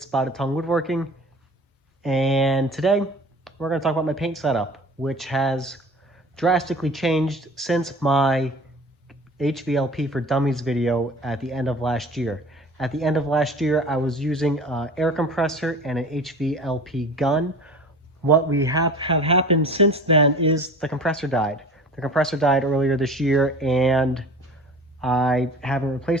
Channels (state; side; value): normal; both; correlation 0.40